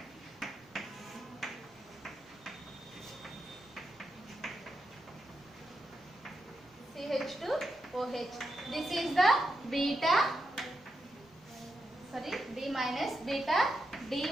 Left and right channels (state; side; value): normal; both; correlation 0.85